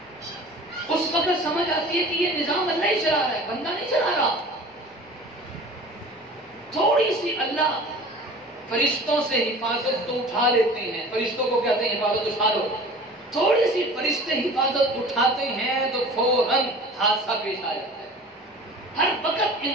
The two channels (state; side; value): normal; both; correlation 0.41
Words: اس وقت سمجھ آتی ہے کہ یہ نظام اللہ ہی چلا رہا ہے، بندہ نہیں چلا رہا۔ تھوڑی سی اللہ فرشتوں سے حفاظت تو اٹھا لیتے ہیں، فرشتوں کو کہتے ہیں حفاظت اٹھا لو، تھوڑی سی فرشتے حفاظت اٹھاتے ہیں تو فوراً حادثہ پیش آ جاتا ہے۔ ہر وقت